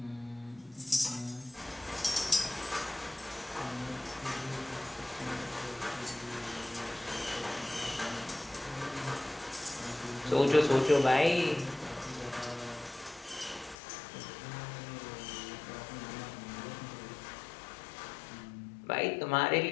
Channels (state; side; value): drops out; right; at 13.8 s